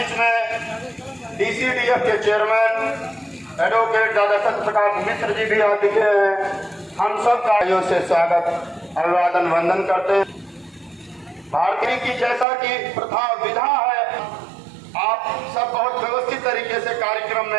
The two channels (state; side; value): drops out; left; at 12.5 s